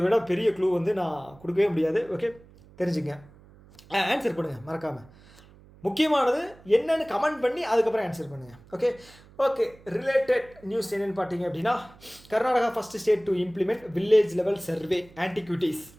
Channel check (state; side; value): noise; right; hum, 24 dB below the sound